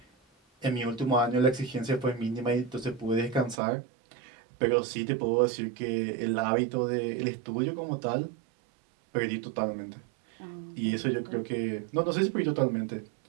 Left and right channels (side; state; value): left; drops out; at 3.6 s